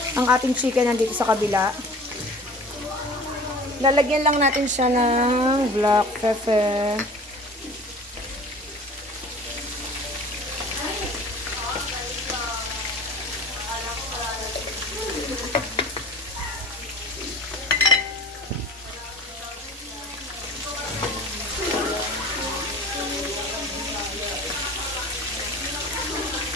Ang ating chicken nandito sa kabila. Lalagyan lang natin siya ng black pepper.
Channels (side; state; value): both; normal; correlation 0.43